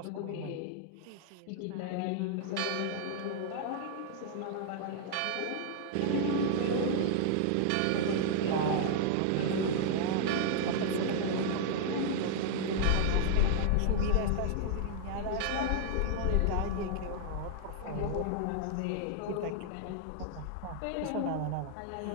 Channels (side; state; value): both; different; correlation -0.01